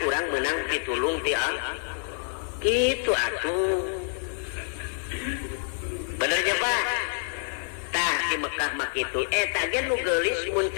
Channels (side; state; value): right; silent; 60 dB below the other